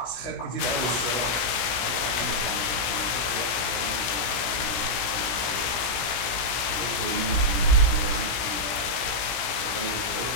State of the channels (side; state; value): right; late; 17 ms